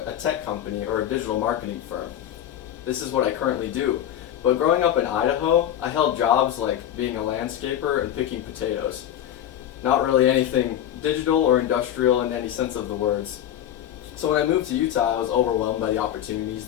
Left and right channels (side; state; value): right; quieter; 10.9 dB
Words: tech company or a digital marketing firm. This is what I currently do. But growing up in Idaho, I held jobs like being a landscaper and picking potatoes. Not really anything digital or industrial in any sense of the words. So when I moved to Utah, I was overwhelmed by the opportunities